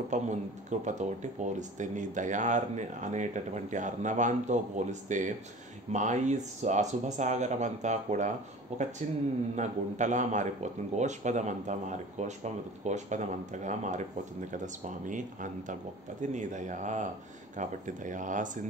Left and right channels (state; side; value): normal; both; correlation 0.41